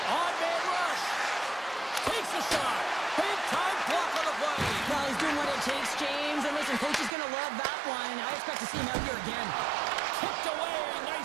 On-man rush. Takes a shot. Big-time block on the play. Well, he's doing what it takes, James. And listen, coach is going to love that one. I expect to see him out here again. Tipped away.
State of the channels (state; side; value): drops out; left; at 7.1 s